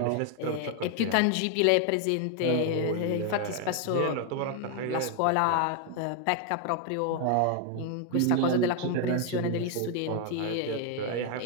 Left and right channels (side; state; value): both; different; correlation 0.01